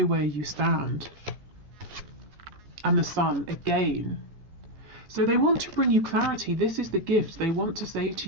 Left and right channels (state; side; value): late; left; 14 ms